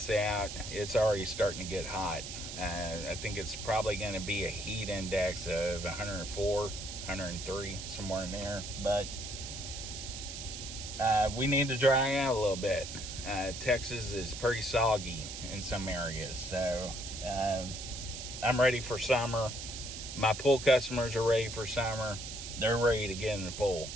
out. It's already starting to get hot. I think it's probably going to be a heat index of 104, 103, somewhere in there. But we need to dry out a little bit. Texas is pretty soggy in some areas. So I'm ready for summer. My pool customers are ready for summer. They're ready to get in the pool.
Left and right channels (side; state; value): right; noise; hiss, 8 dB below the sound